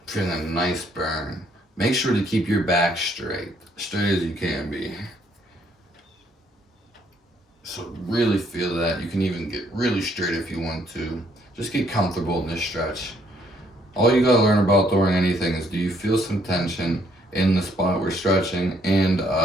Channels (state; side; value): normal; both; correlation 0.67